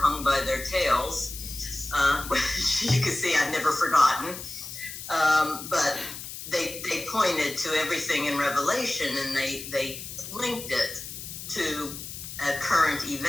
hung by their tails, which you can see I've never forgotten. But they pointed to everything in Revelation, and they linked it to a current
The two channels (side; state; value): left; noise; hiss, 10 dB below the sound